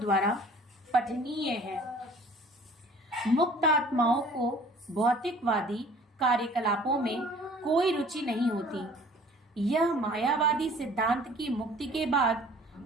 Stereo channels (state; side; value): normal; both; correlation 0.51